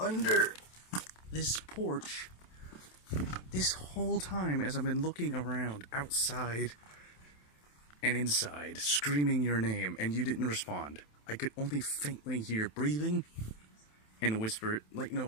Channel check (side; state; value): right; late; 27 ms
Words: this porch this whole time as I've been looking around outside and inside, screaming your name, and you didn't respond. I could only faintly hear breathing and whisper, like,